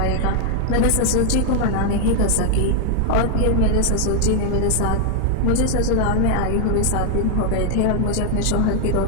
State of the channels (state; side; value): different; both; correlation 0.00